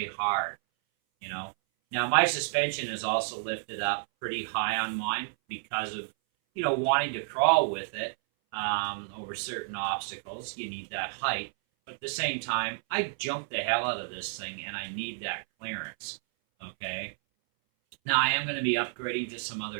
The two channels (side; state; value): left; silent; 57 dB below the other